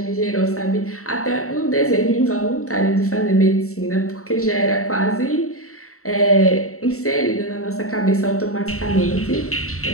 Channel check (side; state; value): right; late; 0.64 ms